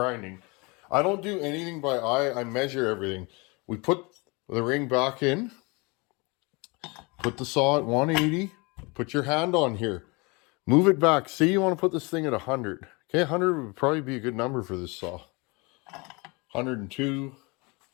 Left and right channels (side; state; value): right; quieter; 27.9 dB